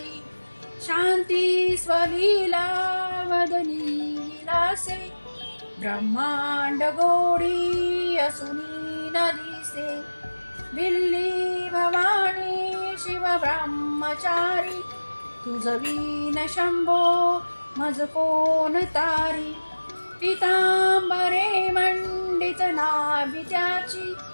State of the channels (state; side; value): inverted; both; correlation -1.00